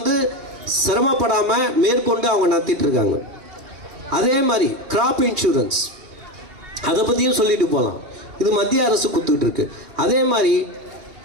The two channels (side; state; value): left; late; 3.2 ms